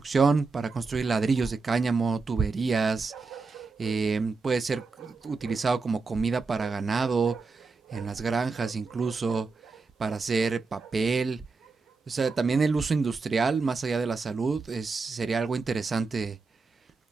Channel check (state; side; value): quieter; left; 4.3 dB